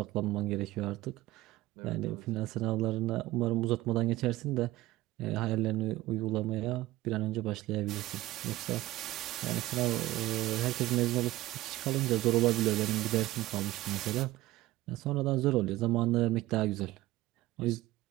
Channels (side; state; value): left; quieter; 17.4 dB